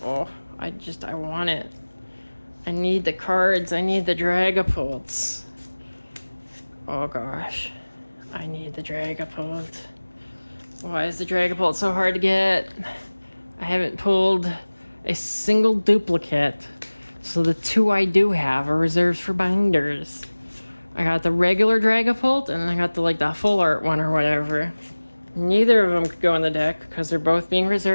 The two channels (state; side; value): inverted; both; correlation -1.00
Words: want it. I need the cards. I need the Dragapults. Oh gosh. I need the Dragapult. Why is the Dragapult so hard to get? I haven't pulled a single duplicate. So the 2 I do have are reserved for binders. I got the regular Dragapult and I got the full art one or whatever. Neither of them could go in the deck because they're both being